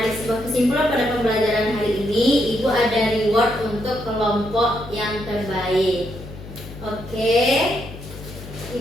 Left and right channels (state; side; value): noise; left; hum, 14 dB below the sound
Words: sebuah kesimpulan pada pembelajaran hari ini, Ibu ada reward untuk kelompok yang terbaik. Oke,